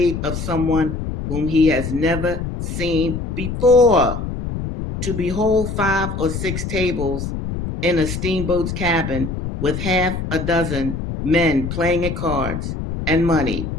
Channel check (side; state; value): left; noise; rumble, 5 dB below the sound